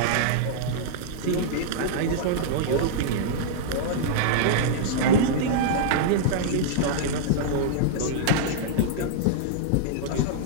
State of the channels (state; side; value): different; both; correlation -0.02